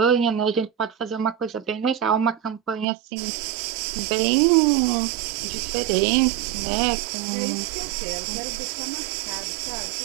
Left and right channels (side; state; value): left; drops out; at 2.9 s